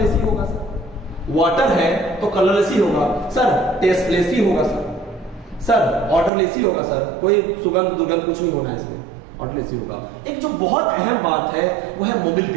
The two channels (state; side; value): drops out; left; at 6.3 s